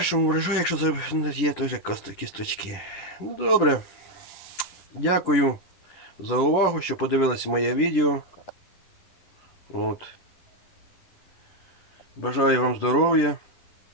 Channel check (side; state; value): right; late; 11 ms